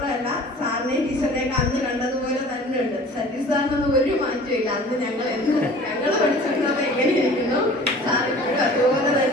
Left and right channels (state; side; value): normal; both; correlation 0.46